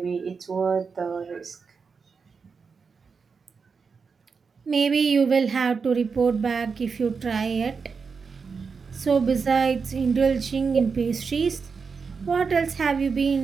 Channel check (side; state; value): left; quieter; 5.3 dB